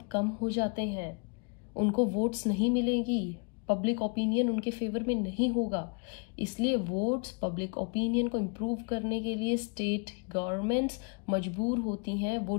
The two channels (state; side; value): quieter; right; 35.9 dB